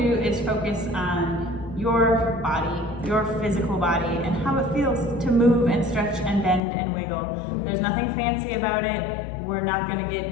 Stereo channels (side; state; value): right; drops out; at 6.6 s